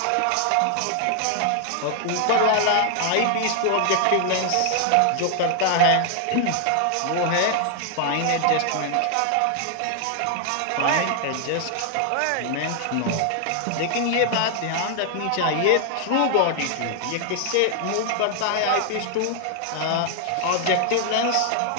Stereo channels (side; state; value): both; different; correlation 0.00